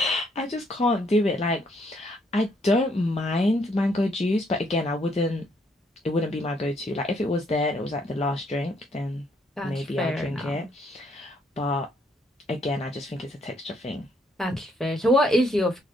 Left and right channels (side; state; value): both; normal; correlation 0.70